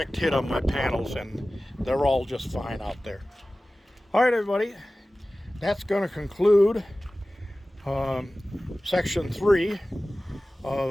hit on my panels, and they're all just fine out there. All right, everybody, that's going to conclude section 3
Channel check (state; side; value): normal; both; correlation 0.97